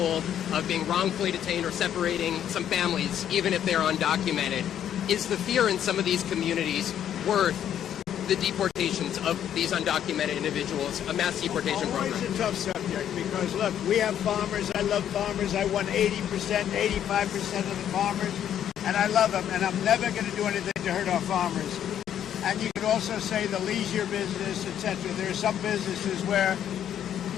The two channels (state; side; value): quieter; right; 10.0 dB